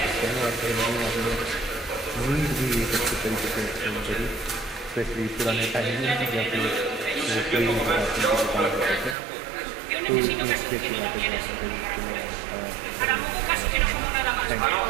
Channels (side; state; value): left; drops out; at 9.2 s